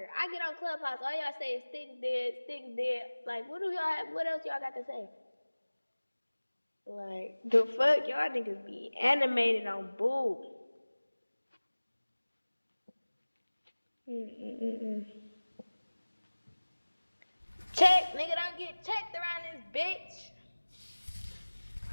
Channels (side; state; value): both; inverted; correlation -1.00